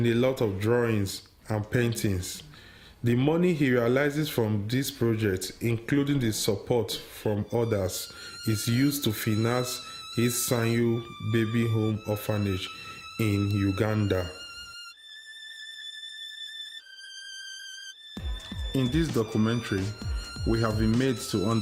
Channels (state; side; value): identical; both; correlation 1.00